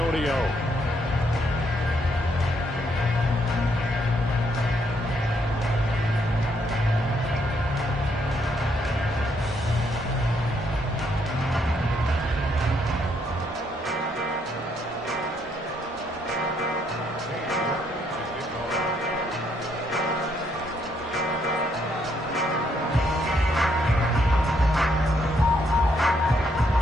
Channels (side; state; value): both; normal; correlation 0.73